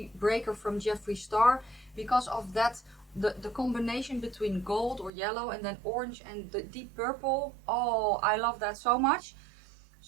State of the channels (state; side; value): drops out; left; at 5.1 s